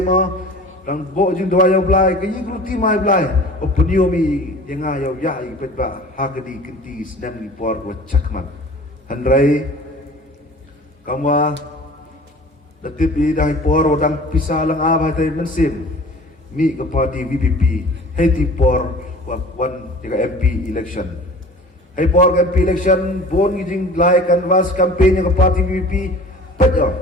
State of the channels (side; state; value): both; normal; correlation 0.43